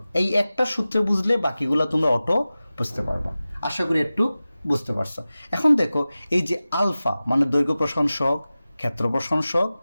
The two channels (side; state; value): both; inverted; correlation -0.96